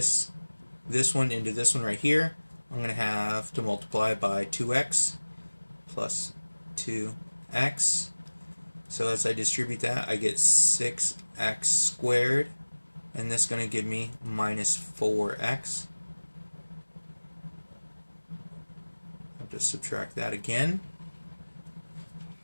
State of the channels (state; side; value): inverted; both; correlation -1.00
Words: one into this one right here, I'm going to have to multiply by 2x plus 2x. So as I distribute that, I get 6x squared, and this is going to give me minus 4x. I have to subtract that again.